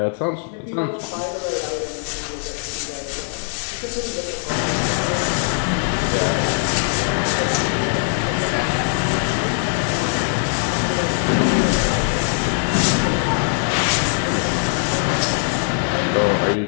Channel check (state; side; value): silent; right; 65 dB below the other